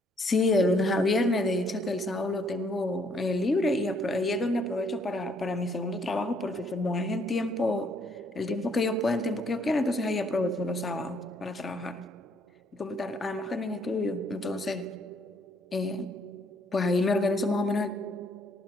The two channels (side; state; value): both; normal; correlation 0.67